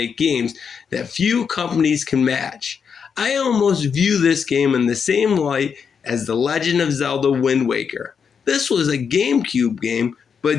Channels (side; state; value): right; quieter; 6.5 dB